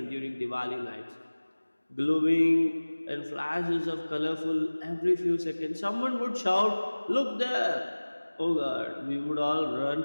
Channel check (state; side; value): inverted; both; correlation -1.00